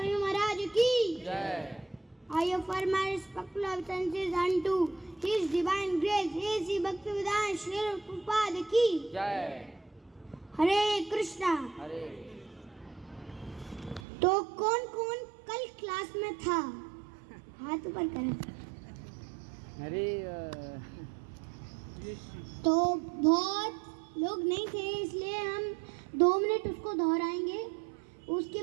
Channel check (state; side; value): drops out; left; at 14.0 s